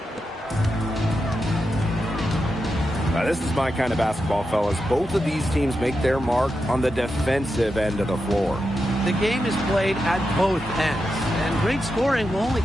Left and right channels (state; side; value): normal; both; correlation 0.88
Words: Now, this is my kind of basketball, fellas. Both of these teams make their mark on the defensive end of the floor. The game is played at both ends, and great scoring will only